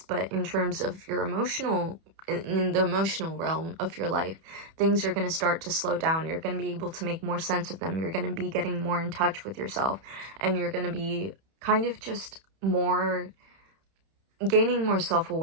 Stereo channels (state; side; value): late; left; 31 ms